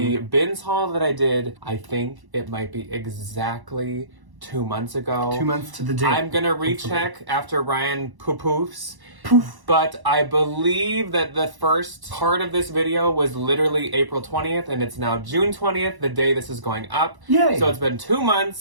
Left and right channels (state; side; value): late; left; 1.1 ms